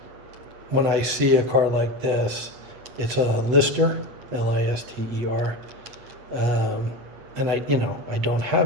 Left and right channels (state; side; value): late; left; 8.5 ms